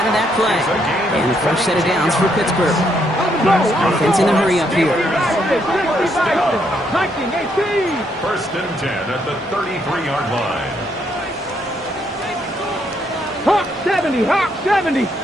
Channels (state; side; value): normal; both; correlation 0.74